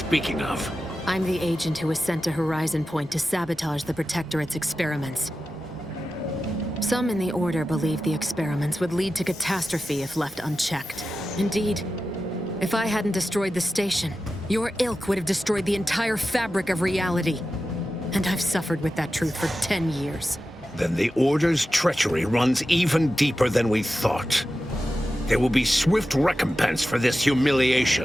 of. I'm the agent who was sent to Horizon Point to sabotage the Protectorate's experiments. Some in the Order believe the experiments would lead to catastrophe if left unchecked. Indeed, if I hadn't destroyed the station, your ilk would have destroyed the entire fabric of reality. And I've suffered with that truth for 10 years. Then the Order's treachery runs even deeper than we thought. There will be swift recompense for this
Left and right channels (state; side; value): normal; both; correlation 0.93